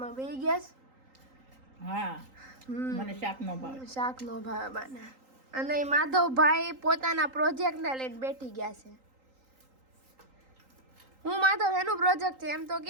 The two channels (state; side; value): late; left; 3.8 ms